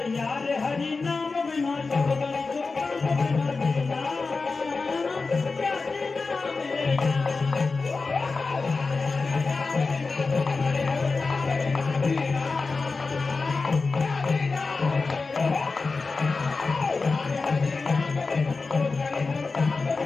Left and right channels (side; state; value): right; quieter; 4.1 dB